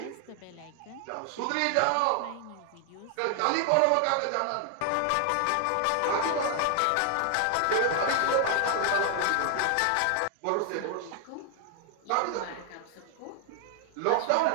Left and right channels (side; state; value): both; different; correlation 0.00